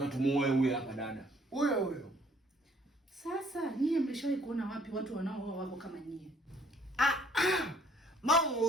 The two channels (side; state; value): both; normal; correlation 0.62